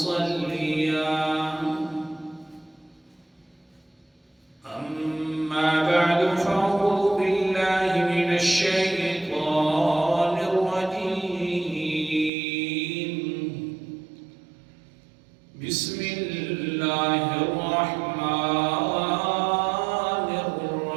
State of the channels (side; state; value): left; drops out; at 12.3 s